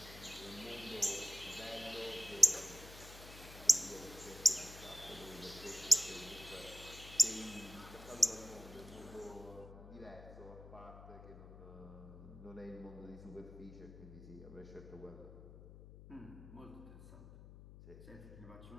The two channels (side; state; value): left; noise; hum, 16 dB below the sound